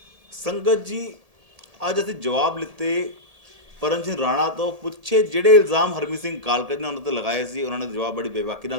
ਸੰਗਤ ਜੀ, ਅੱਜ ਅਸੀਂ ਜਵਾਬ ਲਿੱਤੇ ਪਰਮ ਸਿੰਘ ਰਾਣਾ ਤੋਂ। ਪੁੱਛੇ ਜਿਹੜੇ ਇਲਜ਼ਾਮ ਹਰਮੀਤ ਸਿੰਘ ਕਾਲਕਾ ਨੇ ਉਹਨਾਂ ਤੇ ਲਗਾਏ ਸੀ, ਉਹਨਾਂ ਨੇ ਜਵਾਬ ਬੜੀ ਬੇਬਾਕੀ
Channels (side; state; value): left; late; 1.7 ms